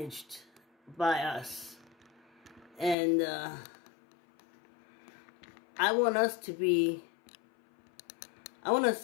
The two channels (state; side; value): drops out; right; at 3.0 s